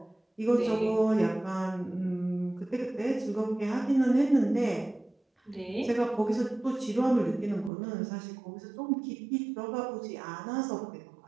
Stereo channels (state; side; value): drops out; left; at 7.7 s